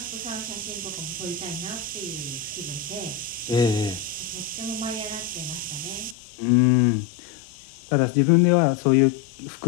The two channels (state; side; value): drops out; right; at 6.2 s